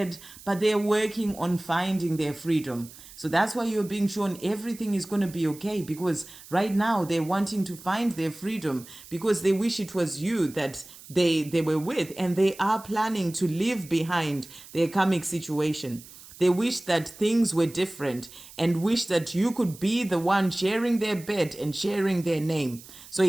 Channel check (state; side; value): noise; right; hiss, 19 dB below the sound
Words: but they're working on finding their freedom. So that's why you're being shown everything is going to be okay, because right now they're wanting to find their freedom because they wish it was you that they were with, and they are planning to leave behind their karmic situation. They wish that things were different and wish that you could be the one sharing their bed and sharing their name. So